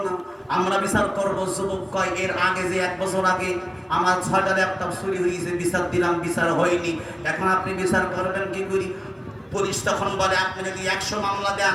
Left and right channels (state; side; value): identical; both; correlation 1.00